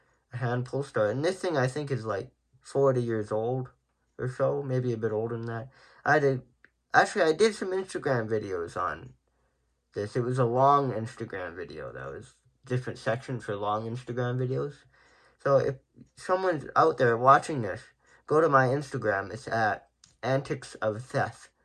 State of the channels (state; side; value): identical; both; correlation 1.00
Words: hand pull start. And this thing I think is like 40 years old or so, maybe a bit older than that. I did some Instagram videos on this. It was a long Instagram video. That was different sections for long Instagram videos. So if someone's out there watching this, go to my Instagram. It's at Antics of Seth,